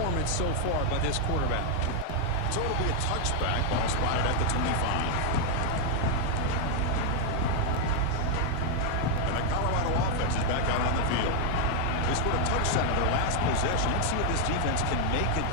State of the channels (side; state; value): both; different; correlation 0.00